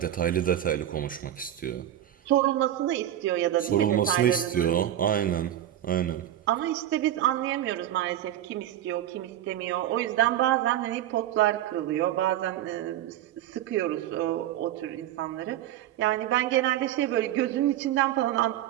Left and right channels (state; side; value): quieter; left; 12.0 dB